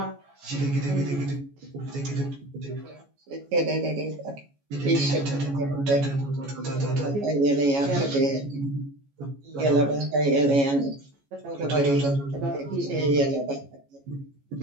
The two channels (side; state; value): left; late; 14 ms